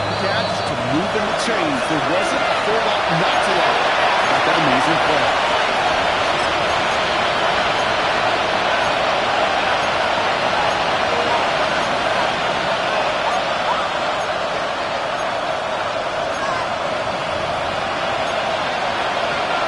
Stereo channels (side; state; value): both; identical; correlation 1.00